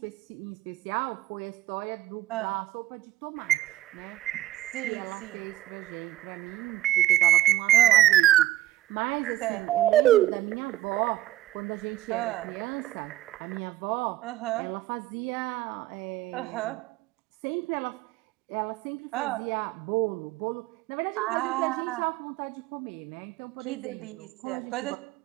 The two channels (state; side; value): quieter; left; 14.7 dB